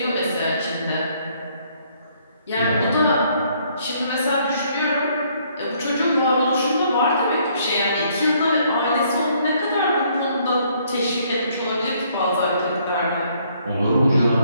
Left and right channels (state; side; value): inverted; both; correlation -0.66